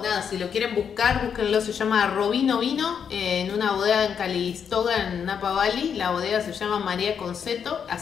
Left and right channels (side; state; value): right; quieter; 7.4 dB